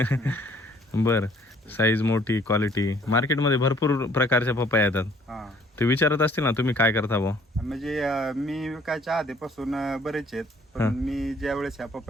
बरं, साईज मोठी, क्वालिटी. मार्केटमध्ये भरपूर प्रकारच्या पपया येतात. हा, ते विचारत असतील ना तुम्ही काय करता बुवा? म्हणजे मी विकायच्या आधीपासून बरेच आहेत, पण मी ज्या वेळेस ह्या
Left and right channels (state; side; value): normal; both; correlation 0.59